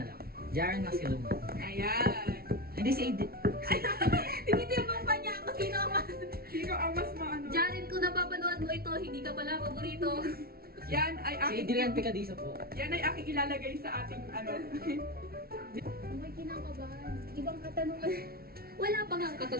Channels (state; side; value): late; left; 0.44 ms